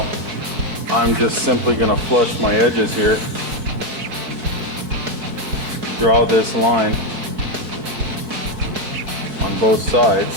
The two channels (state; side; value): late; left; 4.7 ms